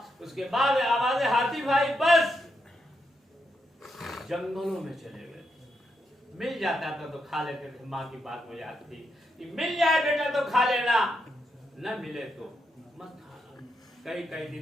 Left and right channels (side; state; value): both; normal; correlation 0.82